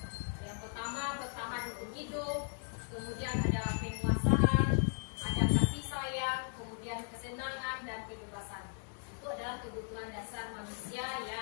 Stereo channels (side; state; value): right; silent; 53 dB below the other